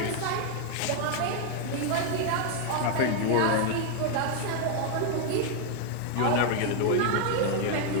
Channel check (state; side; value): different; both; correlation 0.01